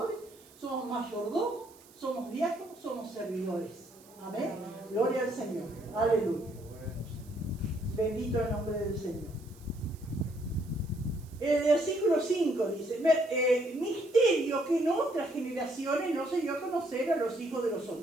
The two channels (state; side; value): noise; right; hiss, 25 dB below the sound